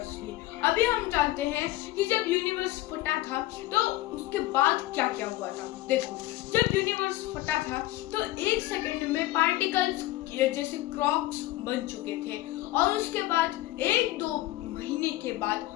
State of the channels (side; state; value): right; quieter; 17.1 dB